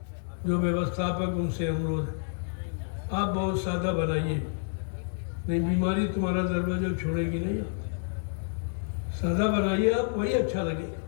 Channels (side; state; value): right; silent; digital silence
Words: जो व्यवस्थापक उनसे अनुरोध है, आप बहुत सादा बनाइए, नहीं बीमारी तुम्हारा दरवाजा छोड़ेगी नहीं। आप सादा बनाइए, आप वही अच्छा लगेगा